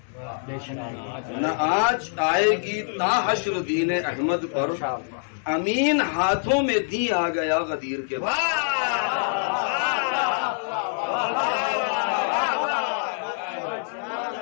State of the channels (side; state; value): right; silent; 62 dB below the other